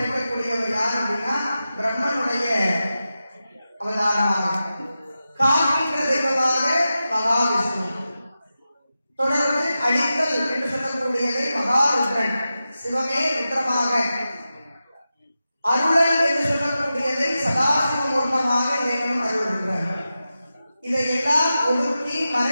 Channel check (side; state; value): both; inverted; correlation -0.92